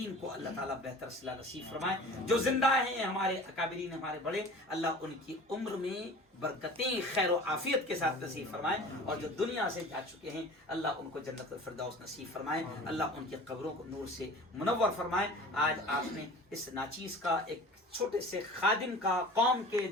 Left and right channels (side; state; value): both; normal; correlation 0.41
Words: को अल्लाह ताला बेहतर सिला नसीब फरमाए। जो जिंदा हैं हमारे अकाबरीन, हमारे बड़े, अल्लाह उनकी उम्र में बरकतें खैर और आफियत के साथ नसीब फरमाए, और जो दुनिया से जा चुके हैं अल्लाह उनको जन्नत फिरदौस नसीब फरमाए, अल्लाह उनकी कब्रों को नूर से मुनव्वर फरमाए। आज आपने इस नाचीज का एक छोटे से खादिम का, कौम के